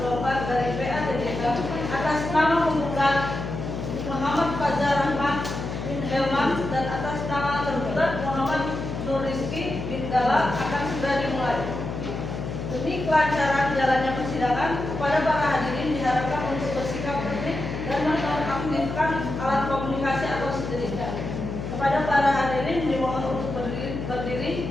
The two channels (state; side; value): noise; left; hum, 6 dB below the sound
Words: dari PATJK atas nama penggugat Muhammad Fajar Rahman bin Helman dan atas nama tergugat Muhammad Nur Rizky bin Dala akan segera dimulai. Demi kelancaran jalannya persidangan, kepada para hadirin diharapkan untuk bersikap tertib dan menonaktifkan alat komunikasi atau sejenisnya. Kepada para hadirin dimohon untuk berdiri.